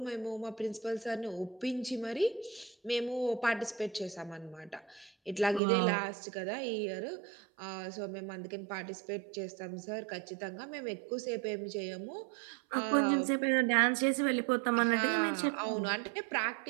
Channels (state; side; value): drops out; left; at 5.6 s